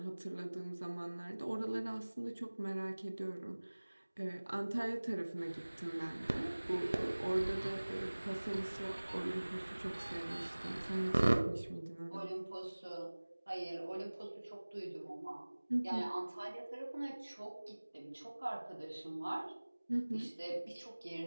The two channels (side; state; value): both; inverted; correlation -1.00